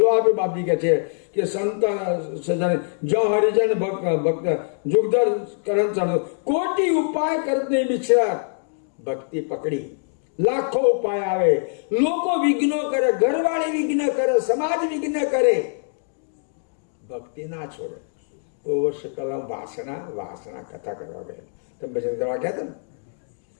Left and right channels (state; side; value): silent; right; digital silence